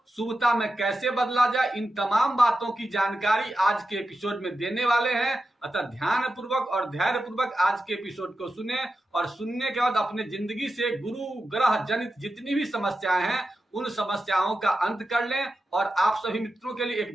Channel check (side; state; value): both; normal; correlation 0.91